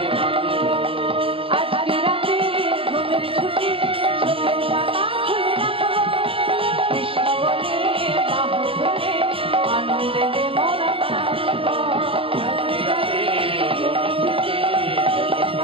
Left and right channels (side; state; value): left; late; 0.27 ms